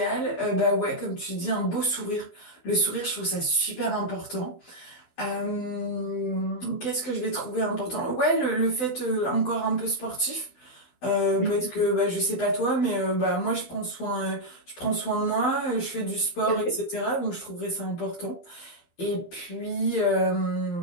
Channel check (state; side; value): late; right; 12 ms